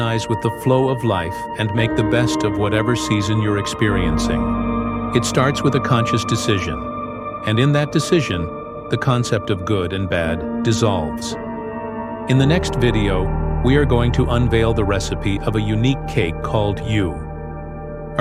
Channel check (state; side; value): identical; both; correlation 1.00